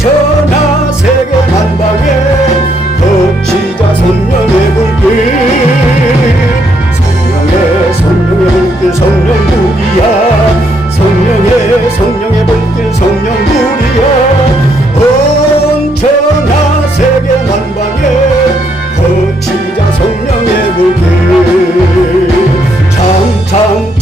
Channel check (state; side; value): normal; both; correlation 0.73